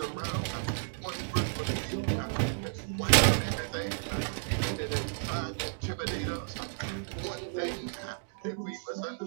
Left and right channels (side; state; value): left; silent; digital silence